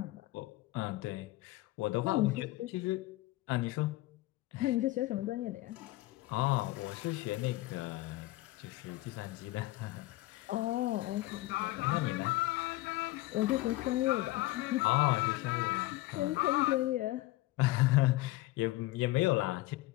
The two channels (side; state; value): right; quieter; 18.3 dB